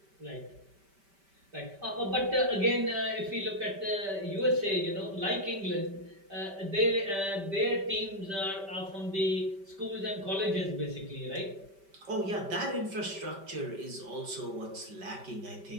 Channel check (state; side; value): late; left; 5.1 ms